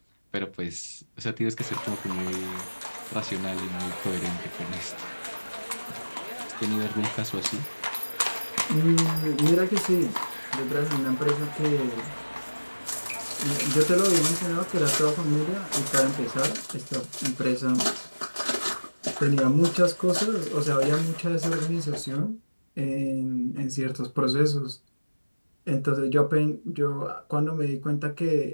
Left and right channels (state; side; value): inverted; both; correlation -1.00